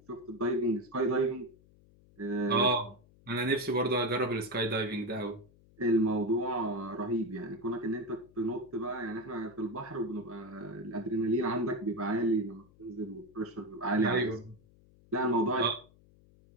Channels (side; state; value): left; noise; hum, 27 dB below the sound